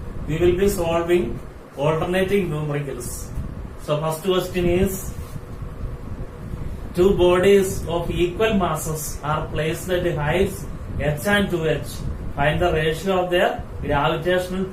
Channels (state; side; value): identical; both; correlation 1.00